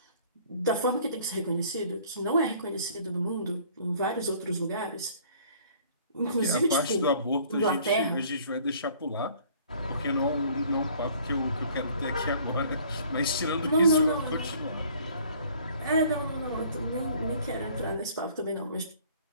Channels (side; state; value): both; inverted; correlation -0.55